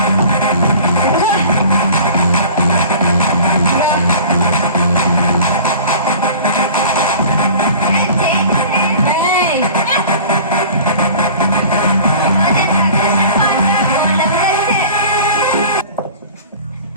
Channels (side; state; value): both; inverted; correlation -0.43